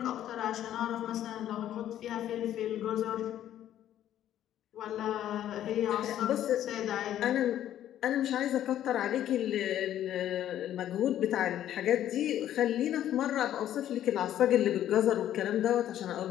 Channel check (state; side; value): quieter; right; 11.6 dB